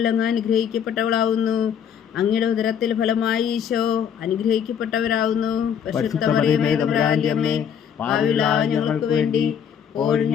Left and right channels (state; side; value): quieter; right; 8.2 dB